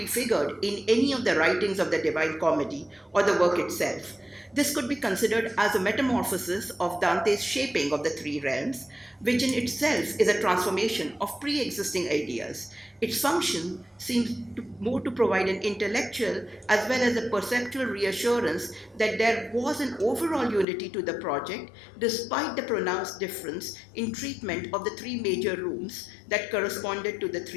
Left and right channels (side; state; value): right; drops out; at 20.7 s